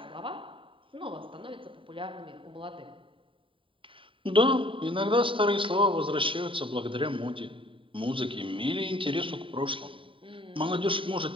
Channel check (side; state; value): left; late; 0.25 ms